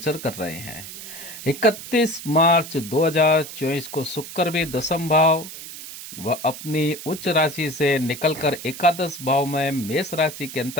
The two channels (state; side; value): noise; right; hiss, 12 dB below the sound